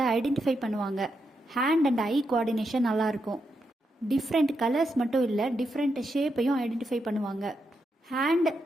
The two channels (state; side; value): normal; both; correlation 0.83